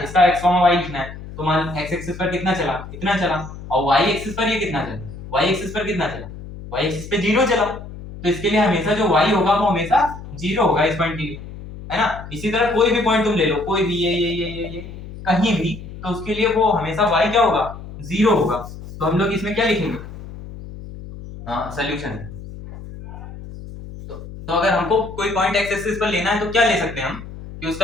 x y लिखना है, तो मान x एक्सिस पर कितना चला, इतना चला, और y एक्सिस पर ये कितना चला, y एक्सिस पर कितना चला, y एक्सिस पे 0 चला, तो इसके लिए हमेशा जो y होगा वो हमेशा 0 होगा इस पॉइंट के लिए, है ना। इसी तरह कोई भी पॉइंट तुम ले लो, कोई भी ये कहीं भी, तो उसके लिए वो हमेशा y क्या होगा, 0 होगा। तो हम लोग इसमें क्या लिखेंगे, हाँ सोल्यूशन। तो अगर हमको कोई पॉइंट एक्स एक्सिस पर लेना है तो क्या ले सकते हैं हम, कि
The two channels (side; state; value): left; noise; hum, 13 dB below the sound